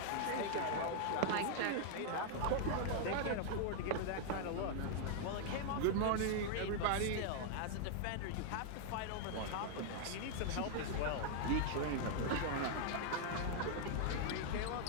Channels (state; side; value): different; both; correlation -0.01